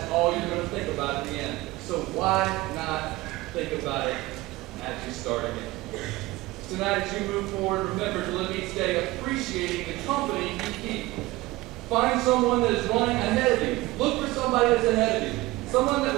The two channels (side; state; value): left; quieter; 19.4 dB